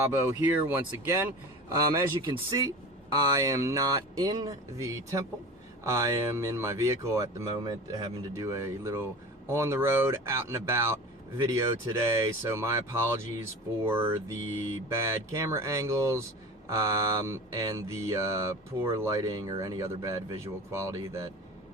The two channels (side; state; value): both; normal; correlation 0.35